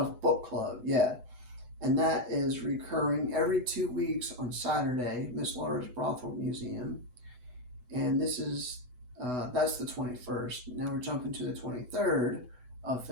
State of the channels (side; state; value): left; late; 8.0 ms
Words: Book Club, yeah. And that is recurring every 2 weeks on Saturday, Miss Laura's Brothel Museum. And this is, that's the 21st. Now we're jumping to the 23rd of